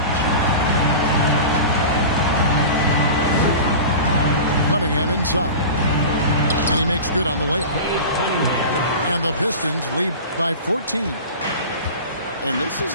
Cunningham inside. And he makes good on the layup. And the Pistons lead by 14. And this is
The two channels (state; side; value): inverted; both; correlation -0.33